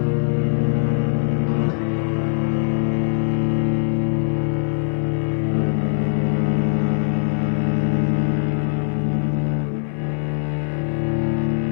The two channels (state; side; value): silent; right; 57 dB below the other